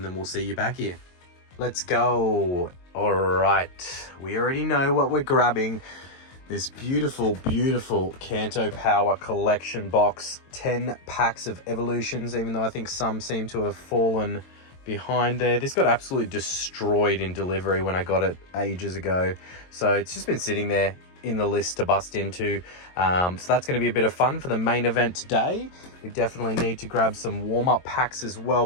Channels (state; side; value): late; right; 22 ms